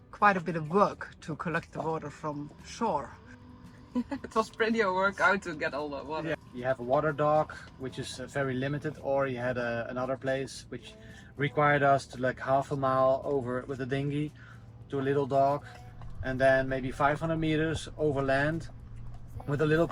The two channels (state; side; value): identical; both; correlation 1.00